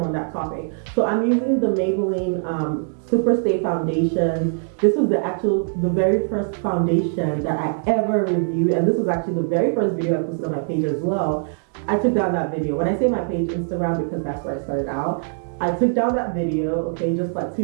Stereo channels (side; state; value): left; silent; digital silence